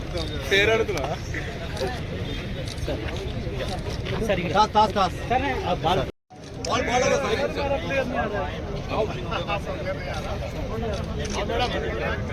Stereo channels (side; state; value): both; identical; correlation 1.00